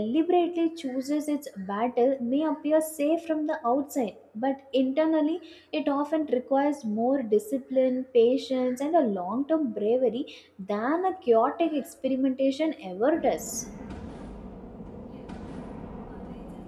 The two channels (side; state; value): both; identical; correlation 1.00